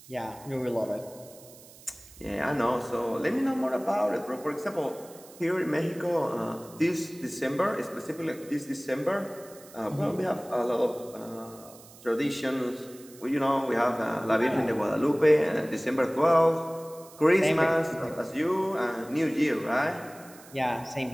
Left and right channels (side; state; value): right; noise; hiss, 21 dB below the sound